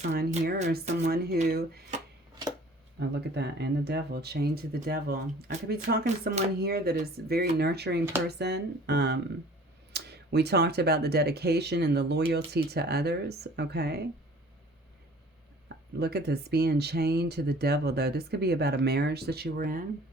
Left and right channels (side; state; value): both; normal; correlation 0.49